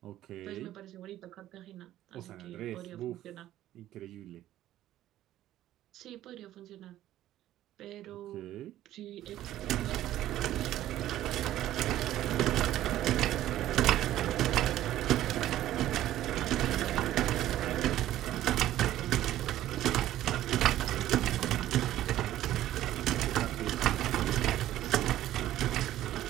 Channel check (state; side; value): quieter; left; 13.4 dB